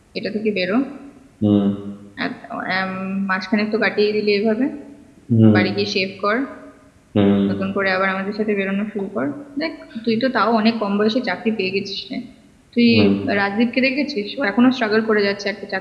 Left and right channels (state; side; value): identical; both; correlation 1.00